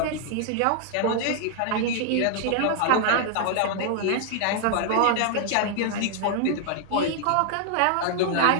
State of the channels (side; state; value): both; different; correlation 0.00